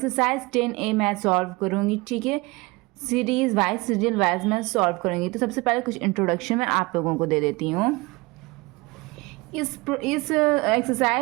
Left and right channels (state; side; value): quieter; left; 23.7 dB